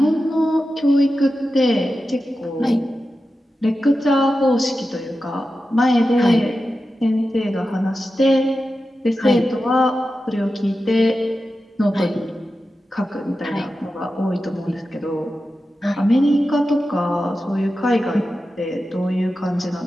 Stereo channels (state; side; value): normal; both; correlation 0.92